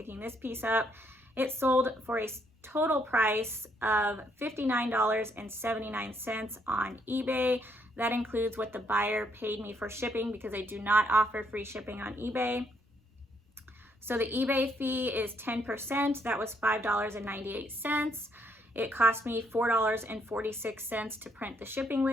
this piece up. It sold for a total price of $59.79 on eBay. That includes what the buyer paid me for shipping, because I do not offer free shipping on eBay. So the eBay fee is 10%. That was $5.98. It cost me $4.46 to print the shipping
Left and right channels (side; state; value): both; normal; correlation 0.71